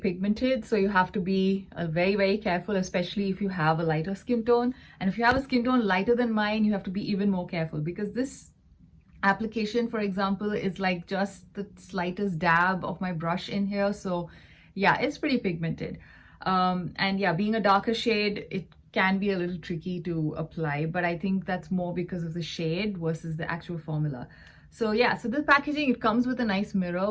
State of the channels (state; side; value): identical; both; correlation 1.00